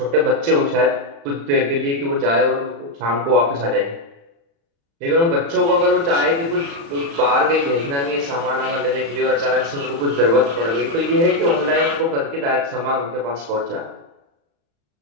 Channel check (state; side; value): late; left; 35 ms